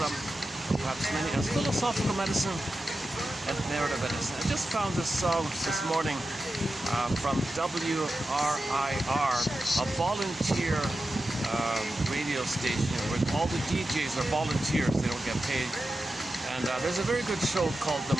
perhaps many, as philosophical medicine and narrative medicine. I just found this song this morning from WRIR, a volunteer radio station where all the DJs are volunteers, they don't get paid. And there's a very good show called The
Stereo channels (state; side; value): normal; both; correlation 0.92